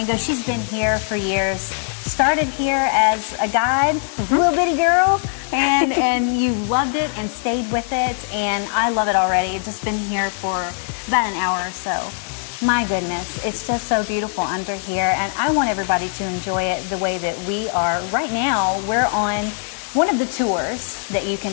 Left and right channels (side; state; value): right; silent; digital silence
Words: She's been here for years. Started here as a guide, little bitty girl, and you loved it and stayed with it, and I love it already. Just been here for about an hour or so. My goodness, it's just so beautiful under here, and I want everybody to enjoy it the way that we are. Right now, we're on one of the tours that you